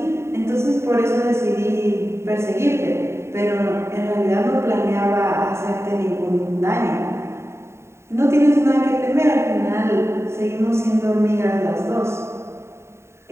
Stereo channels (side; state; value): left; late; 0.13 ms